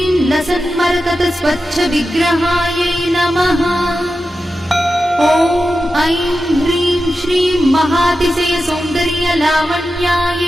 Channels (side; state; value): both; normal; correlation 0.91